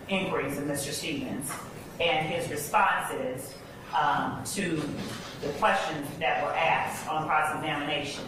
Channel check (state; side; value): identical; both; correlation 1.00